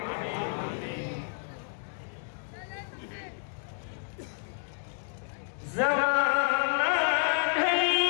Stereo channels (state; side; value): silent; right; 58 dB below the other